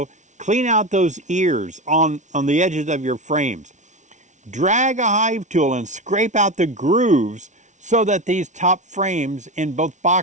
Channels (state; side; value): late; left; 0.35 ms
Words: clean out those ears on the edges of your frames. Drag a hive tool and scrape out the grooves so that these top frames in both